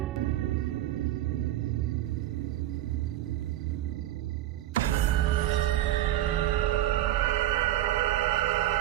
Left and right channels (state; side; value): quieter; left; 13.8 dB